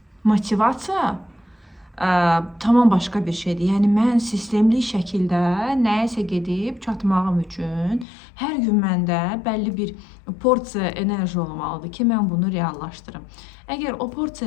motivasiya tamam başqa bir şeydir. Yəni mən sistemli şəkildə nəyəsə gedib çatmağım üçün hər gün məndə bəlli bir porsiya enerji olmalıdır ki, mən bunu reallaşdırım. Əgər o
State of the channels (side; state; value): right; drops out; at 8.1 s